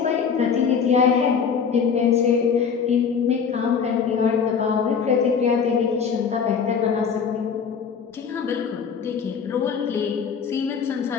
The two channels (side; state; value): right; quieter; 6.5 dB